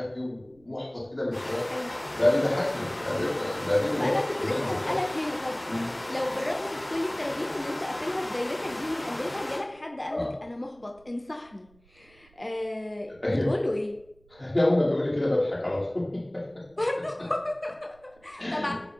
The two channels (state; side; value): noise; right; rumble, 30 dB below the sound